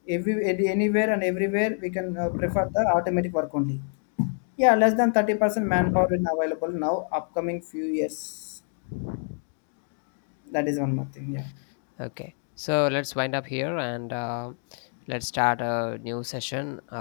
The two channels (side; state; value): right; silent; 58 dB below the other